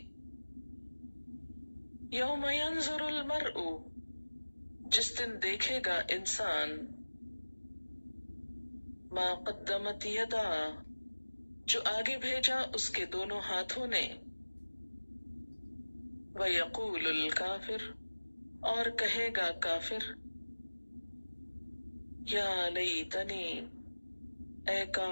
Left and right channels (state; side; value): inverted; both; correlation -1.00